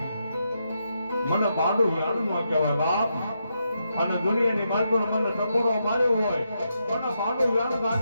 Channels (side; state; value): both; inverted; correlation -0.83